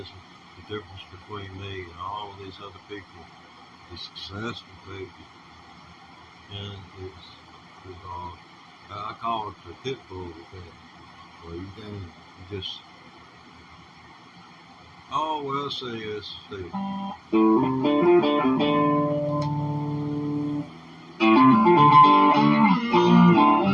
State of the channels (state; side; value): identical; both; correlation 1.00